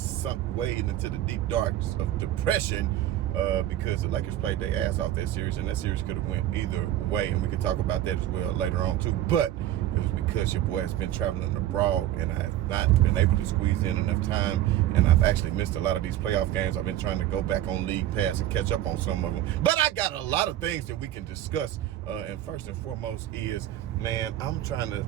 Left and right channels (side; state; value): left; quieter; 13.0 dB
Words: way into the deep darks of depression. Because the Lakers played their ass off that series, and that series could have went either way, and we can talk about that as well later on too. But it was because your boy has been traveling abroad, and I have not been able to squeeze in enough time, and I've actually missed a lot of these playoff games. I've been trying to go back on League Pass and catch up on some of them, but I got a lot of things that we can discuss. And first and foremost is, man, I'm trying